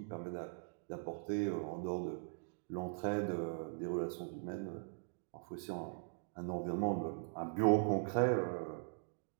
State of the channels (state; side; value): silent; left; digital silence